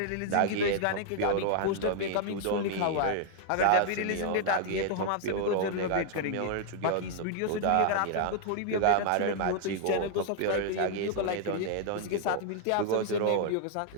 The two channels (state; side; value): different; both; correlation 0.00